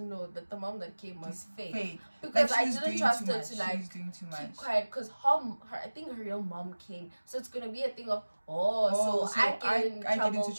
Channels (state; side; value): inverted; both; correlation -1.00